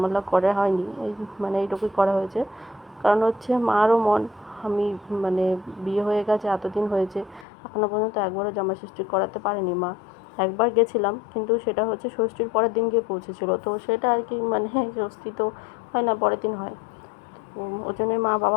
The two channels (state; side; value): drops out; right; at 7.5 s